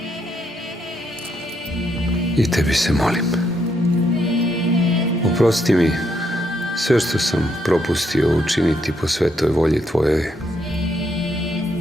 i tebi se molim. Oprosti mi sve što sam propustio učiniti po svetoj volji tvojoj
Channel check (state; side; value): normal; both; correlation 0.75